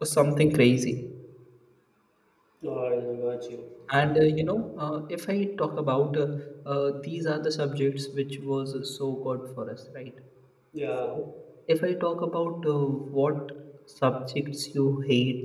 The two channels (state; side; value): identical; both; correlation 1.00